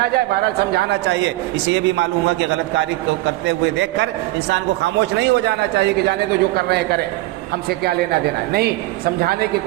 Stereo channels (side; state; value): left; quieter; 18.6 dB